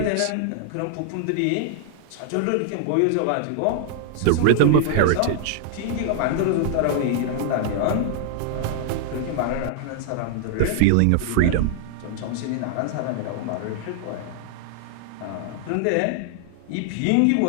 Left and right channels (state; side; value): different; both; correlation -0.01